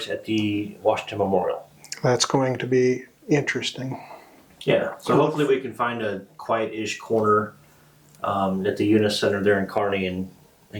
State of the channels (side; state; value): both; identical; correlation 1.00